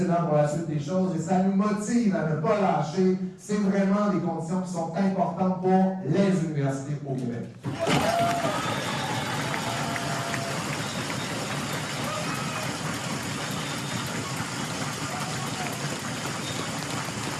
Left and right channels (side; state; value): both; identical; correlation 1.00